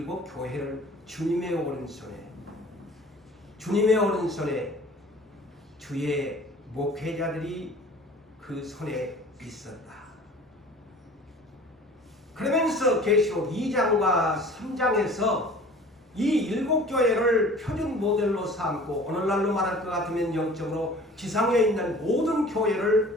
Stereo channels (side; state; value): both; normal; correlation 0.45